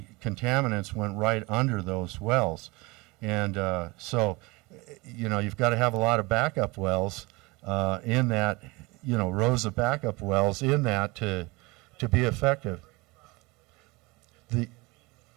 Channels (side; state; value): left; quieter; 24.4 dB